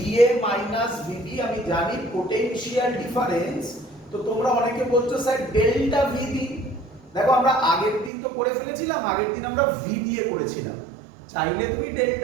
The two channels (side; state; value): left; drops out; at 8.1 s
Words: মাইনাস VD আমি জানি পোটেনশিয়াল ডিফারেন্স। তো তোমরা অনেকে বলছো স্যার ডেল্টা VD। দেখো আমরা আগের দিন তো করে ফেলেছিলাম, আগের দিন আমরা V দিয়ে করেছিলাম। চাইলে তুমি